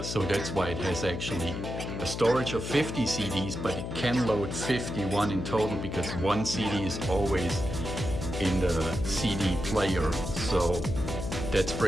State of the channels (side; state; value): left; noise; hum, 5 dB below the sound